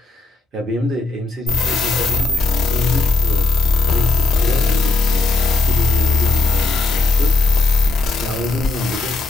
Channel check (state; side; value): quieter; right; 3.6 dB